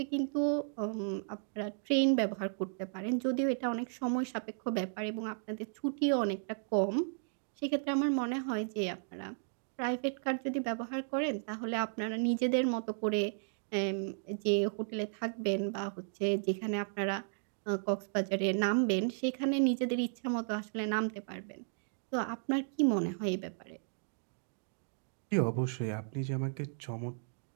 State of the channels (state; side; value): silent; left; digital silence